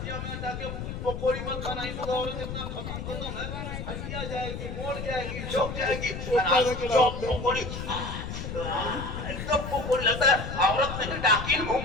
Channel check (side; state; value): left; noise; rumble, 6 dB below the sound